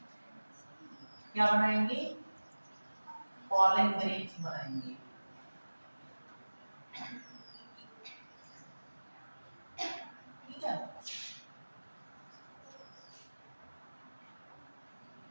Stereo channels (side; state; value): both; inverted; correlation -1.00